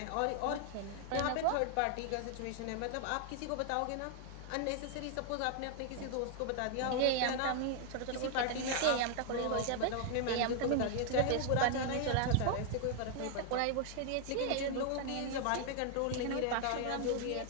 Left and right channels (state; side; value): different; both; correlation 0.00